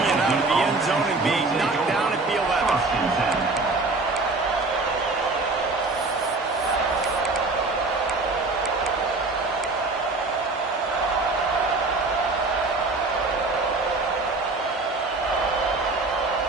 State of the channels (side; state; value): left; quieter; 3.4 dB